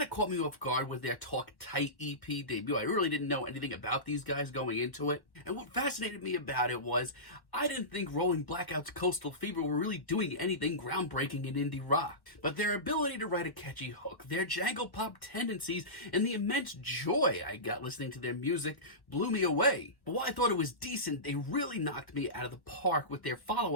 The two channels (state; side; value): late; right; 1.1 ms